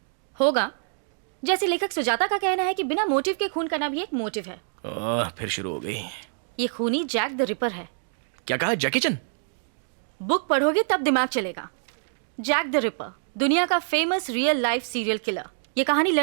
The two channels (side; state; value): left; silent; digital silence